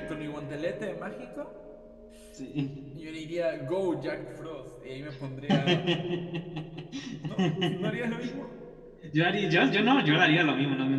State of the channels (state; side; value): identical; both; correlation 1.00